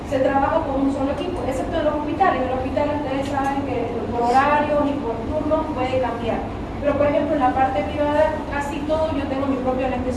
se trabaja con un solo equipo, excepto en los hospitales. En los hospitales ustedes saben que por horarios y por turnos puede cambiar. Pero por ejemplo en la parte privada, casi todo, yo tengo mi propio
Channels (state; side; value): identical; both; correlation 1.00